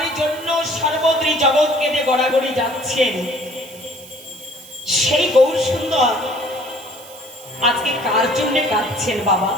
জন্য সর্বত্রই জগৎ কেঁদে গড়াগড়ি যাচ্ছেন, সেই গৌর সুন্দর আজকে কার জন্য কাঁদছেন বাবা?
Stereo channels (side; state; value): right; noise; hiss, 19 dB below the sound